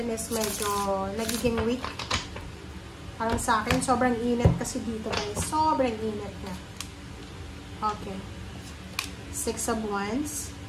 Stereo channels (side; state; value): both; identical; correlation 1.00